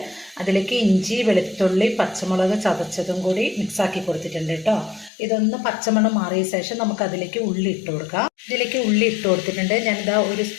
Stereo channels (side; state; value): right; drops out; at 5.1 s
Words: അതിലേക്ക് ഇഞ്ചി വെളുത്തുള്ളി പച്ചമുളക് ചതച്ചതും കൂടി മിക്സാക്കി കൊടുത്തിട്ടുണ്ട് കേട്ടോ. ഇതൊന്ന് പച്ചമണം മാറിയ ശേഷം നമുക്ക് അതിലേക്ക് ഉള്ളി ഇട്ട് കൊടുക്കാം. ഇതിലേക്ക് ഉള്ളി ഇട്ട് കൊടുത്തിട്ടുണ്ട്. ഞാനിതാ ഒരു